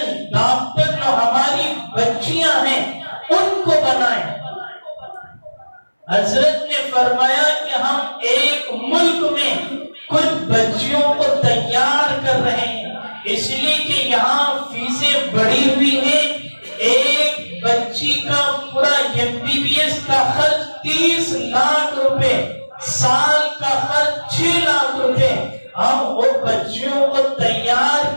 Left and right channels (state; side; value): inverted; both; correlation -1.00